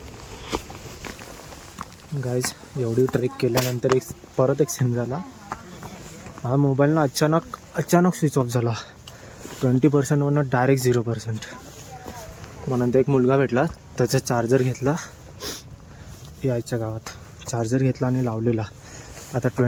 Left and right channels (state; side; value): identical; both; correlation 1.00